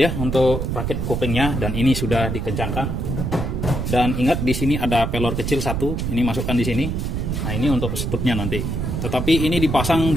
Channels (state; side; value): noise; right; rumble, 2 dB below the sound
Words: untuk rakit koplingnya, dan ini sudah dikencangkan. Dan ingat di sini ada pelor kecil satu, ini masukkan di sini. Nah, ini untuk stupnya nanti. Tetapi ini dipasang